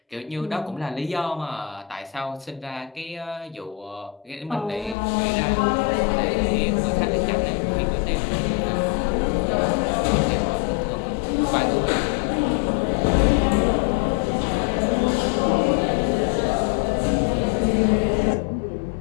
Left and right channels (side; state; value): right; drops out; at 5.0 s